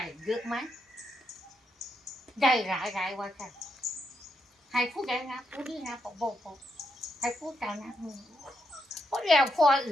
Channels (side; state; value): both; normal; correlation 0.81